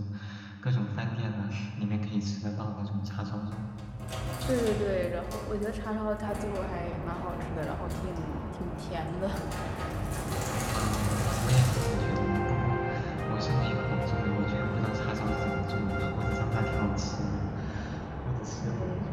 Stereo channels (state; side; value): identical; both; correlation 1.00